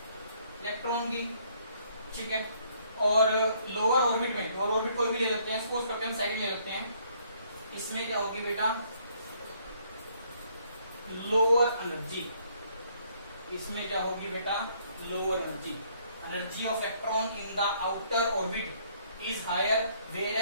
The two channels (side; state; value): both; inverted; correlation -0.66